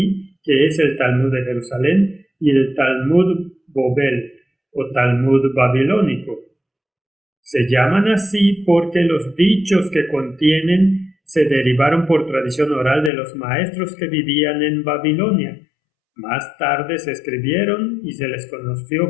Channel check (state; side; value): drops out; right; at 13.1 s